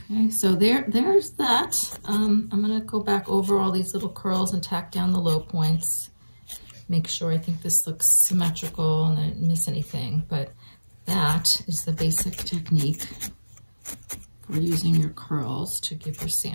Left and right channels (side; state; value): both; inverted; correlation -1.00